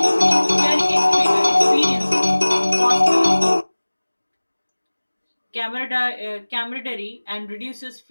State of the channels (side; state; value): both; inverted; correlation -1.00